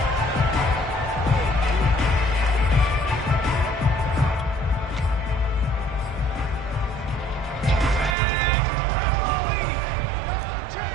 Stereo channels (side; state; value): left; drops out; at 8.2 s